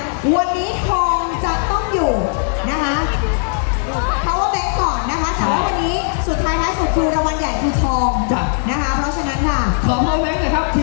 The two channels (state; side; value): silent; right; digital silence